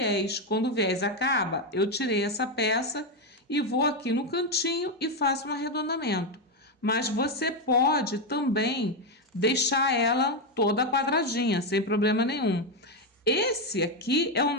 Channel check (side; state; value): both; normal; correlation 0.07